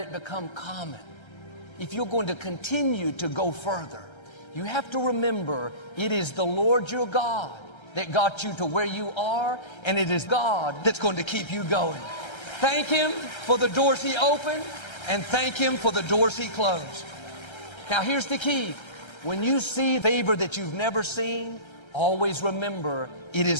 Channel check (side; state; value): right; late; 1.3 ms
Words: become common? If you're going to continue to go further, you have to remember it is the Lord your God that got you to where you are, and it is God that's going to keep you going. Thank Him for the doors He opened, and thank Him for the doors He closed. Now here's the key. When you see favor that you've never seen, always remember it